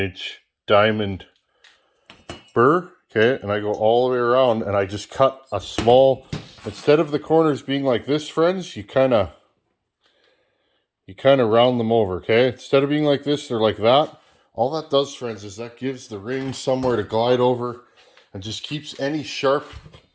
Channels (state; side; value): identical; both; correlation 1.00